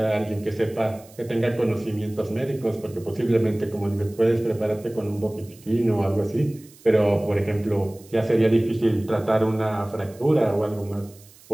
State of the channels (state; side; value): noise; right; hiss, 25 dB below the sound